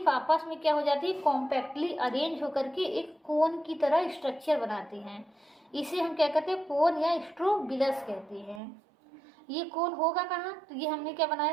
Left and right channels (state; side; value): drops out; left; at 8.6 s